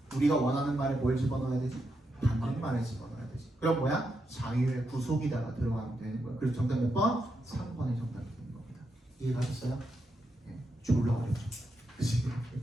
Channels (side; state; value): both; normal; correlation 0.83